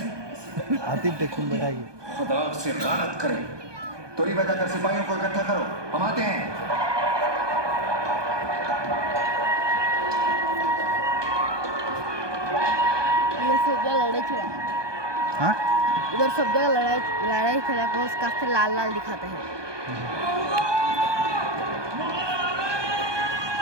आतिफ टेक्शन बैठाएगी। खुदा से लानत करे। तोरी बताकर सिपाहियों को इकट्ठा करो, हम आते हैं। ये सब जगह लड़ाई चला। हाँ? उधर सब जगह लड़ाई चला को उसका से लाल लाल दिखाते हैं।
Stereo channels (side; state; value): left; late; 1.2 ms